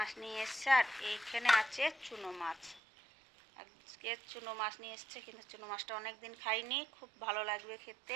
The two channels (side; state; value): left; drops out; at 2.8 s